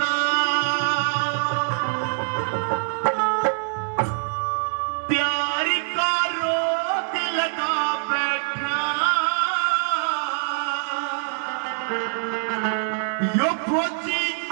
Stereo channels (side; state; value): left; silent; digital silence